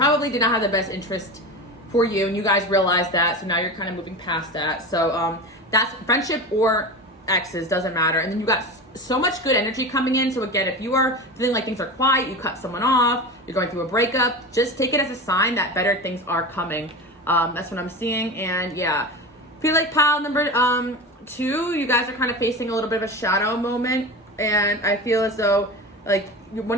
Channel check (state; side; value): normal; both; correlation 0.27